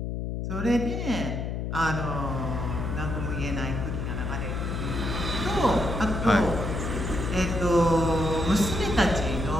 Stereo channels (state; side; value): noise; left; hum, 3 dB below the sound